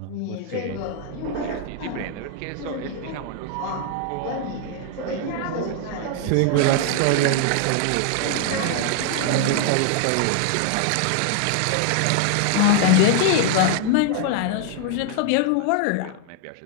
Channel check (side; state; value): both; different; correlation 0.00